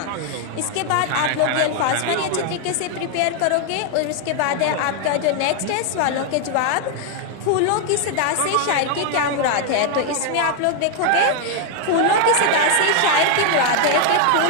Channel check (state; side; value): different; both; correlation 0.00